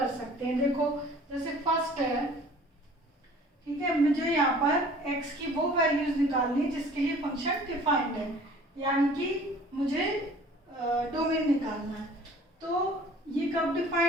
सकते हैं। देखो जैसे फर्स्ट है, ठीक है, मुझे यहाँ पर x की वो वैल्यूज निकालनी है जिसके लिए फंक्शन डिफाइंड है, यानी कि मुझे डोमेन निकालना है। तो ये कब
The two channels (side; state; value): both; normal; correlation 0.50